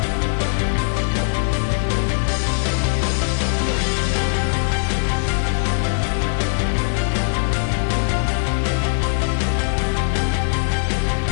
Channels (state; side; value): silent; right; digital silence